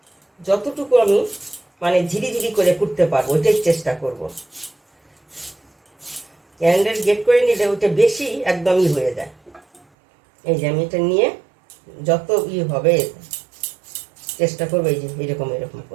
যতটুকু আমি মানে ঝিরিঝিরি করে করতে পারবো, ওইটাই চেষ্টা করব। ক্যান্ডেল গেট করে নিলে ওইটা বেশি একদমই হয়ে যায়। এই যে আমি এটা নিয়ে যত হবে চেষ্টা করবো এই যে এরকম এরকম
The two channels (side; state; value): left; drops out; at 9.8 s